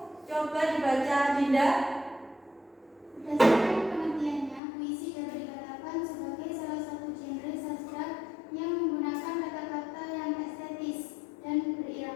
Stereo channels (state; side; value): drops out; right; at 4.6 s